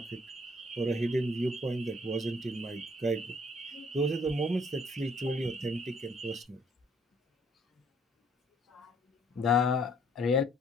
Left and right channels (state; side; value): normal; both; correlation 0.63